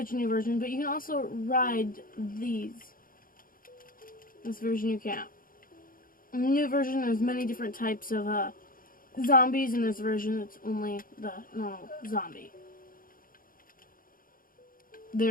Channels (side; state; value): right; late; 0.41 ms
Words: new version, but you can also ride these. This version you can't. In the new version, there's many different types of zombies. In this version, it's only the normal zombie.